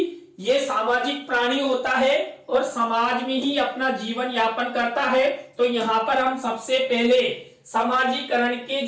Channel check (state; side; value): identical; both; correlation 1.00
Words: ये सामाजिक प्राणी होता है और समाज में ही अपना जीवन यापन करता है। तो यहाँ पर हम सबसे पहले समाजीकरण के